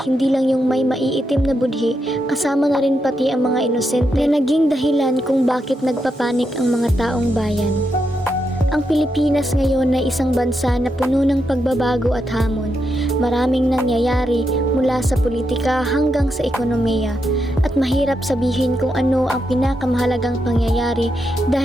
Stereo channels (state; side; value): normal; both; correlation 0.83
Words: hindi lang yung may maiitim na budhi, kasama na rin pati ang mga inosente na naging dahilan kung bakit nagpapanik ang mga taong bayan. Ang Pilipinas ngayon ay isang bansa na puno ng pagbabago at hamon. Maraming nangyayari mula sa politika hanggang sa ekonomiya. At mahirap sabihin kung ano ang pinakamahalagang pangyayari